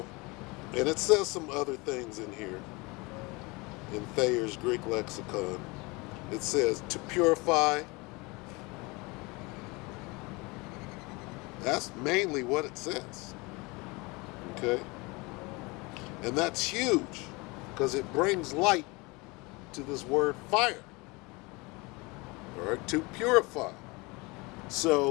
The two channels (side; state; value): right; quieter; 25.7 dB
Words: and it says some other things in here. In Thayer's Greek lexicon, it says to purify. That's mainly what it says. Okay? And that's huge, because it brings light to this word fire. All right? To purify.